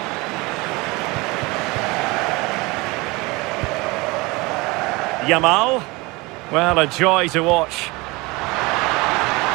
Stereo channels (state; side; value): quieter; left; 24.1 dB